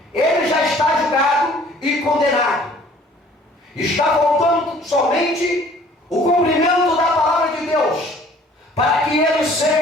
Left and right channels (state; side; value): normal; both; correlation 0.54